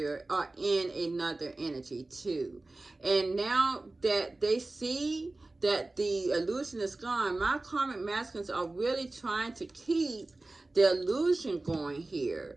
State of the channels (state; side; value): quieter; left; 3.0 dB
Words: are in another energy too. And now that they see that the illusion is gone, my karmic masculines are really trying to keep the illusion going